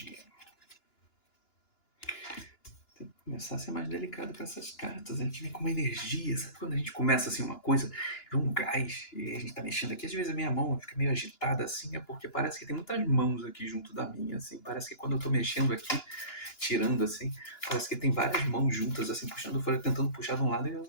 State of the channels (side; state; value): right; late; 2.9 ms